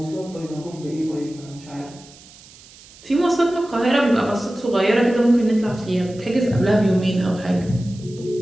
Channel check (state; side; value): noise; right; hiss, 22 dB below the sound